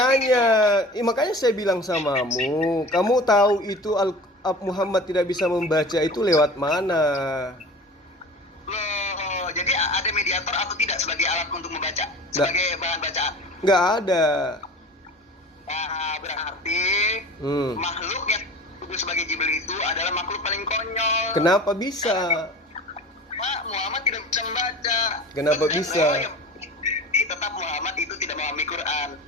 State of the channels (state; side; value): normal; both; correlation 0.38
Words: saya bilang samamu, kamu tahu itu Muhammad tidak bisa membaca itu lewat mana? Loh, jadi ada mediator atau tidak sebagai alat untuk membaca, sebagai bahan bacaan? Nggak ada. Nah, berarti makhluk yang disebut sebagai Jibril itu adalah makhluk paling konyol. Kenapa bisa? Pak, Muhammad tidak bisa membaca. Kenapa bisa? Tetap Muhammad itu tidak memahami Quran.